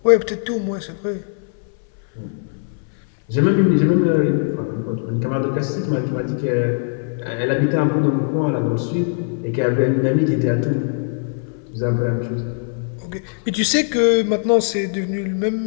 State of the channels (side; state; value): right; silent; 60 dB below the other